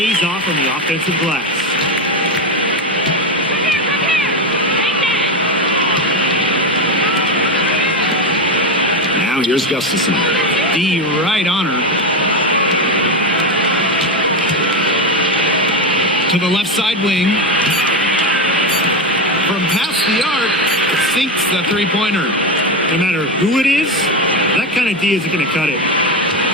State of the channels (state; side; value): normal; both; correlation 0.13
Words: off on the offensive glass. Now here's Gustafson. D right on her. To the left side wing. From past the arc, sinks the 3-pointer. No matter who it is, that kind of D isn't going to cut it.